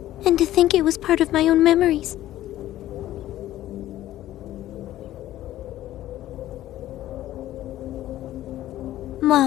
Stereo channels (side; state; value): right; quieter; 14.0 dB